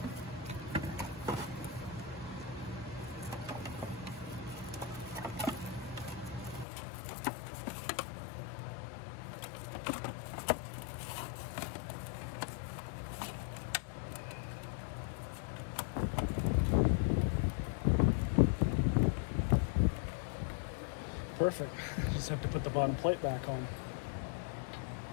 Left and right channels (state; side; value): drops out; right; at 6.7 s